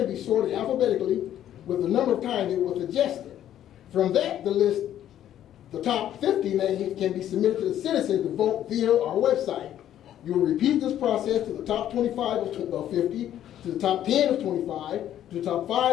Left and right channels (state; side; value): quieter; right; 11.3 dB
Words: be sorted alphabetically with the number of times it was suggested. From that, the top 50 names can be submitted to the citizens to vote via our website. You will repeat this process to the top 25 of 50, to the top 10 of 25, to the top